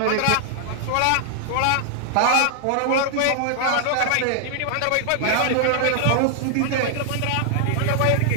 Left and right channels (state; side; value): different; both; correlation 0.00